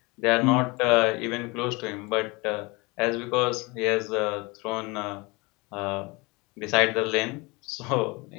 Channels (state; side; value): quieter; right; 25.9 dB